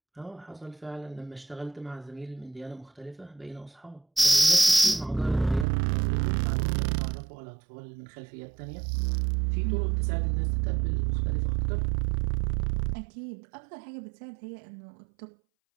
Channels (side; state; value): left; drops out; at 5.7 s